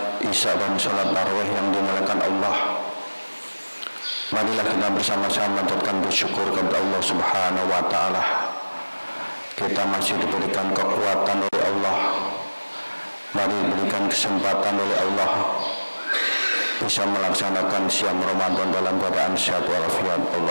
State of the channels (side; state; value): both; inverted; correlation -1.00